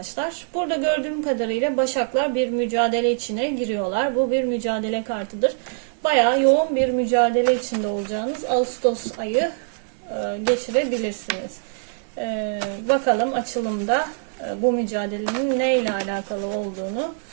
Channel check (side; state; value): left; silent; 63 dB below the other